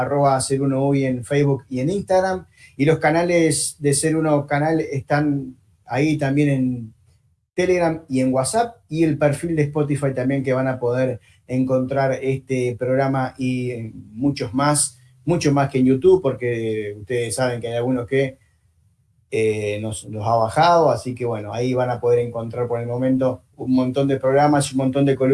en Facebook y en Instagram, y los canales de Ser Uno canal están ahí también en Telegram y en WhatsApp, y el perfil de Spotify también, que van a poder encontrar este programa y muchos más mucho más que en YouTube, porque ustedes saben que hay algunos que nos ha bajado, así que bueno, ahí van a poder encontrar por el momento un montón de programas y un montón de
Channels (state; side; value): identical; both; correlation 1.00